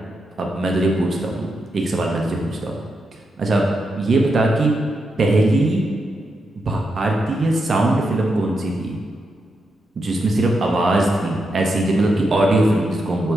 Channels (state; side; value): normal; both; correlation 0.85